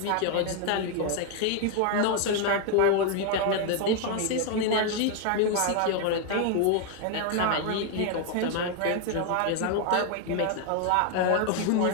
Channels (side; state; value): both; different; correlation 0.01